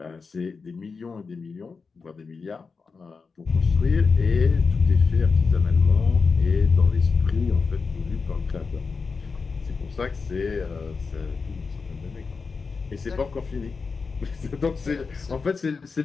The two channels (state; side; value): quieter; right; 4.8 dB